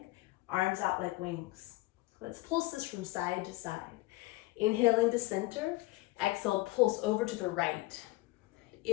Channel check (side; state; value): right; quieter; 20.2 dB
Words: arms out like wings. Let's pulse this from side to side. Inhaling to center, exhale, pulse over to the right.